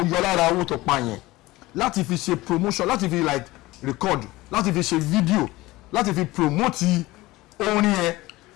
yọ lára owó tó pa yẹn láti fi ṣe promotion láti fi like record láti fi ṣe video láti fi promote orin yẹn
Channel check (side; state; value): right; quieter; 19.3 dB